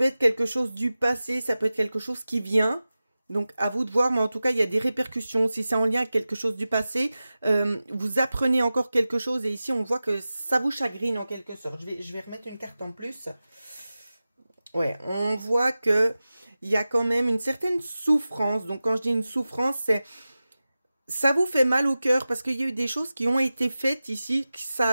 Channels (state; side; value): inverted; both; correlation -0.95